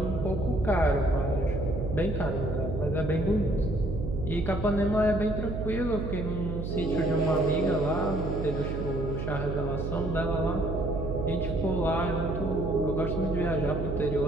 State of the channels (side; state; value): right; noise; hum, 4 dB below the sound